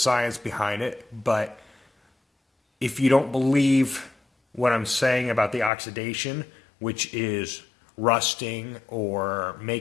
behind it, but if you don't believe what I'm saying about the oxidation, which is rusting or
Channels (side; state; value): right; drops out; at 5.7 s